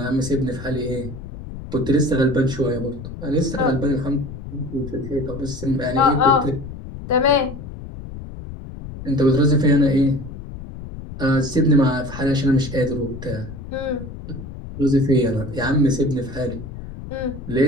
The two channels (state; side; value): noise; left; rumble, 11 dB below the sound